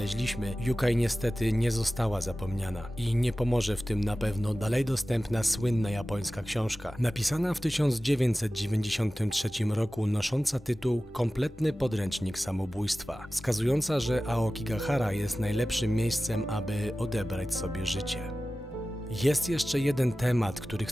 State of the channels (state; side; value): normal; both; correlation 0.96